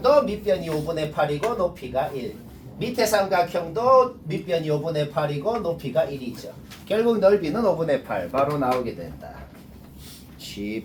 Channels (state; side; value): identical; both; correlation 1.00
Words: 밑변이 5분의 8이고 높이가 1. 밑의 삼각형도 밑변이 5분의 8이고 높이가 1이죠. 결국 넓이는 5분의 8. 바로 나오게 된다.